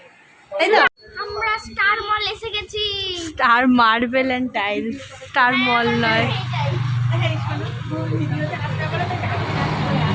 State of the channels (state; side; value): identical; both; correlation 1.00